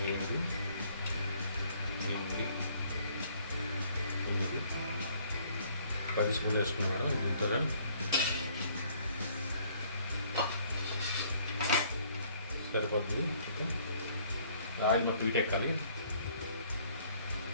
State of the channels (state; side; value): inverted; both; correlation -0.61